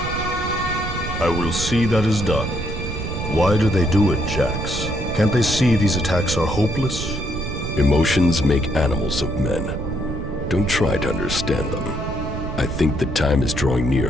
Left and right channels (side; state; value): right; noise; rumble, 5 dB below the sound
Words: I will see that is done. Why do they do it, Jax? Can't they see these attacks are hopeless? Emotions make animals of men. Don't try to understand them. I think the time is drawing